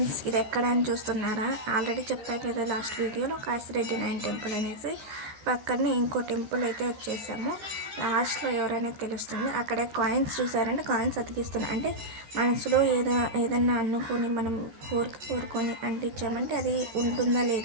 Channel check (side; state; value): left; late; 14 ms